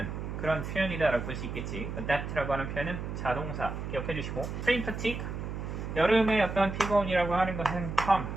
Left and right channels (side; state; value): right; noise; hum, 6 dB below the sound